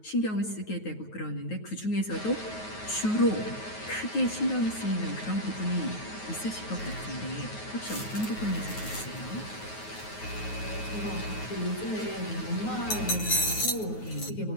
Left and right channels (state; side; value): late; right; 9.4 ms